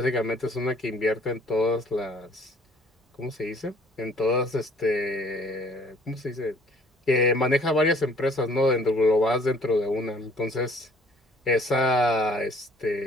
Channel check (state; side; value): normal; both; correlation 0.57